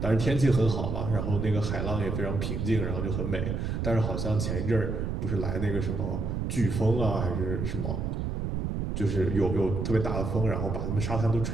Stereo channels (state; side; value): noise; right; rumble, 2 dB below the sound